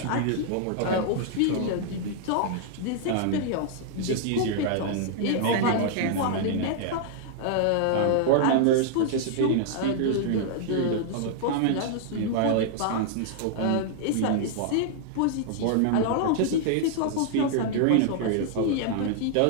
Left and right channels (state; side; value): different; both; correlation -0.01